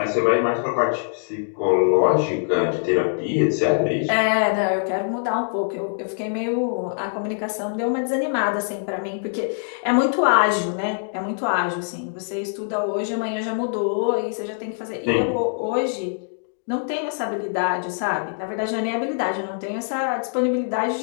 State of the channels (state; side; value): silent; right; digital silence